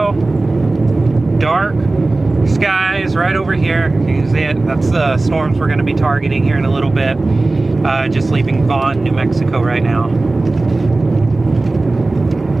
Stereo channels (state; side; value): quieter; left; 3.2 dB